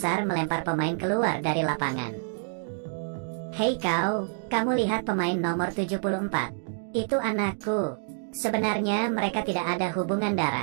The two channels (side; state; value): left; silent; digital silence